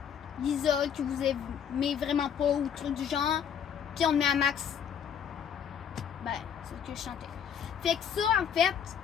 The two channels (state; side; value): quieter; right; 8.1 dB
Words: l'isole que vous aimez vraiment pas ou truc du genre, puis on le met à max. C'est ce que je chantais. Fait que ça, en fait,